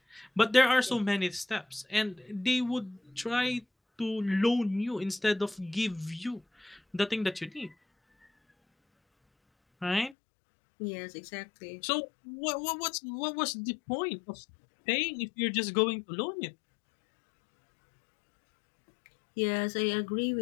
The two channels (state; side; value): drops out; right; at 10.2 s